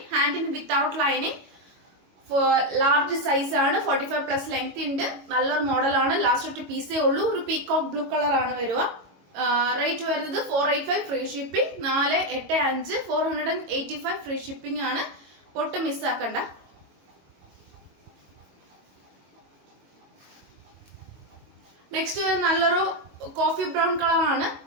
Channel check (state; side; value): late; left; 22 ms